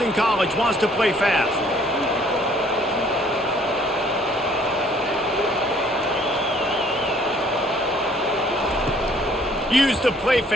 College wants to play fast. Use the play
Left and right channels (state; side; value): normal; both; correlation 0.59